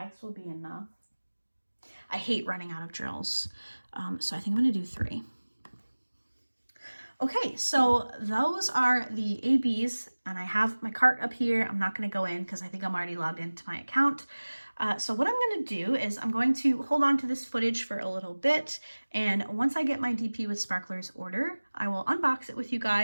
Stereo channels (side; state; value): both; inverted; correlation -1.00